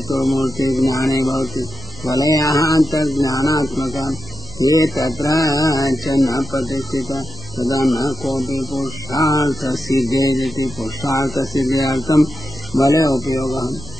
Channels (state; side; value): normal; both; correlation 0.88